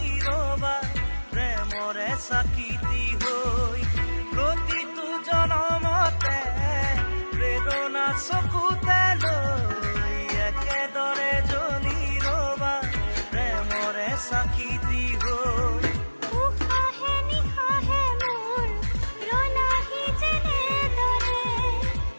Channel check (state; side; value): inverted; both; correlation -1.00